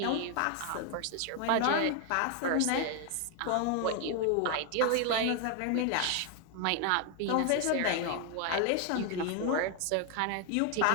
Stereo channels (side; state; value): both; different; correlation 0.00